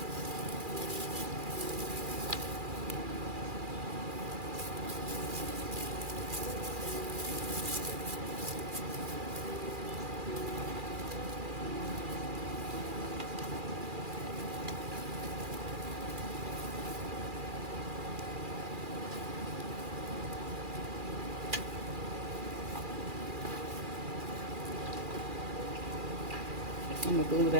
I'm gonna glue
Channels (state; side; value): late; left; 2.4 ms